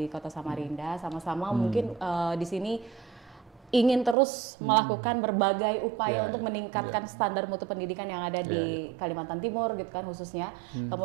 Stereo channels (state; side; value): drops out; left; at 4.2 s